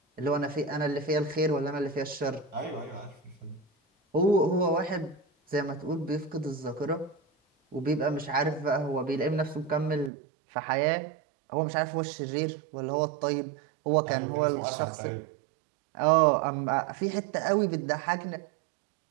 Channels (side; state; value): left; drops out; at 10.1 s